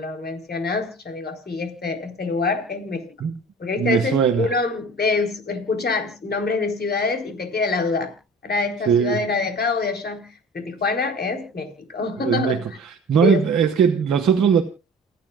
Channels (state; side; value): normal; both; correlation 0.41